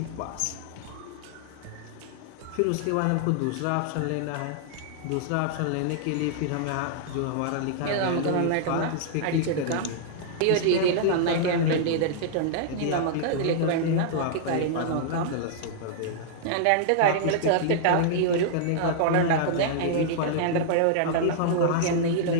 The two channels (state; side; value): different; both; correlation -0.01